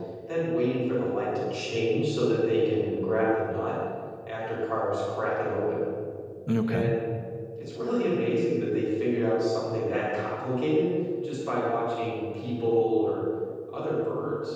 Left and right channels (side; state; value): both; identical; correlation 1.00